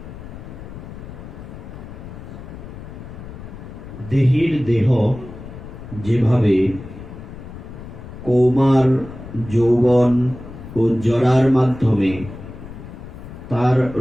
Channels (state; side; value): noise; left; rumble, 13 dB below the sound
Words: देहिर देह जेभावे कौमार যৌবন ও জরার মাধ্যমে তার